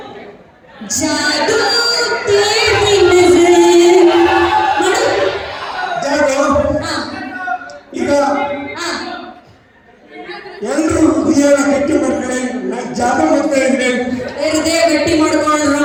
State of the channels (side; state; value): both; identical; correlation 1.00